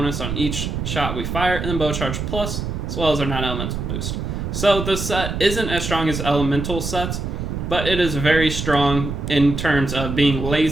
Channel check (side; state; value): right; noise; rumble, 4 dB below the sound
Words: on each shot we fire, and then bow charge plus, as well as our non-elemental boost. So this set isn't as strong as elemental sets, but it is very strong in terms of being